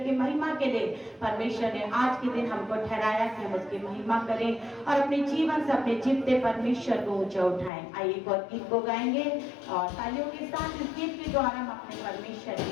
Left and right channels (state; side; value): drops out; right; at 7.7 s